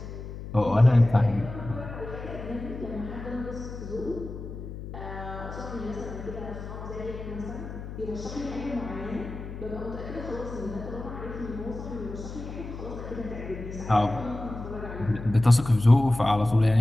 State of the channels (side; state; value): left; noise; hum, 10 dB below the sound